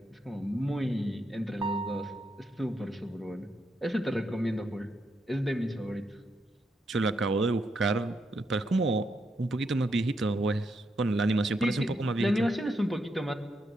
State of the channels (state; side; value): normal; both; correlation 0.80